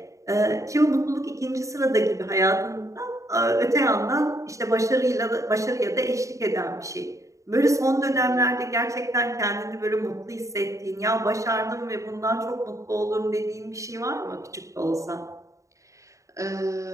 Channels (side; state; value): left; late; 0.15 ms